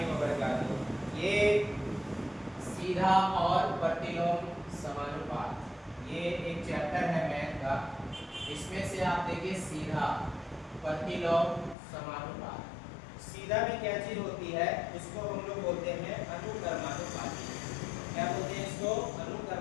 वबरकातुहू। ये सीधा और प्रतिलोम समानुपात, ये एक चैप्टर है मैथ का। इसमें से आप देखिए सीधा, प्रतिलोम, समानुपात। सीधा में क्या चीज होती है, इसको हम लोग बोलते हैं अनुक्रमानुपाती। क्या बोलते हैं इसको?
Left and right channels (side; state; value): right; drops out; at 11.8 s